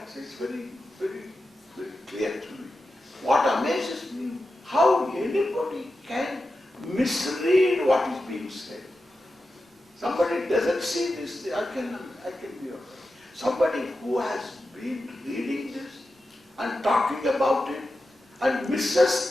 is very, very, very clear to me. What amazes me, how anybody can misread what is being said. Somebody doesn't see this, I can be okay. Somebody who has been reading this and talking about it and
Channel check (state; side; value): normal; both; correlation 0.91